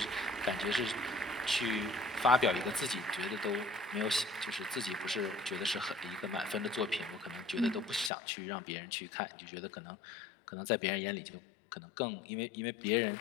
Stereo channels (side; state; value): right; drops out; at 8.1 s